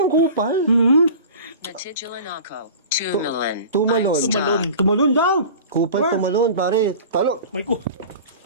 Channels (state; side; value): inverted; both; correlation -0.38